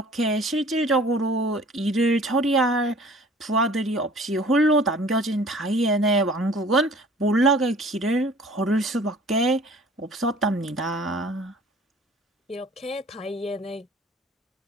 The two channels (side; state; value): both; normal; correlation 0.49